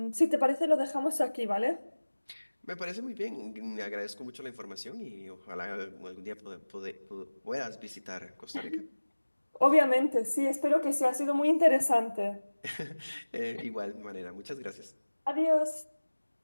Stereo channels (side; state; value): both; inverted; correlation -1.00